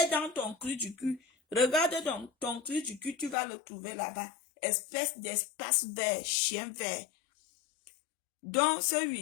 dans ton clou du cul. Regarde dans ton clou du cul, tu vas le trouver là-bas. Espèce d'espace vert, chien vert. Donc ce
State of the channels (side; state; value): right; drops out; at 3.4 s